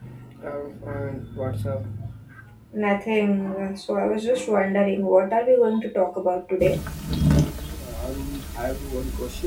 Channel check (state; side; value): identical; both; correlation 1.00